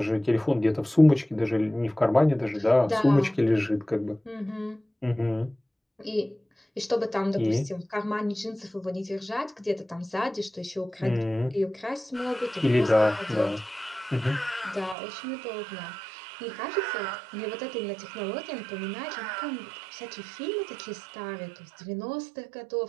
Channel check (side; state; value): left; drops out; at 15.0 s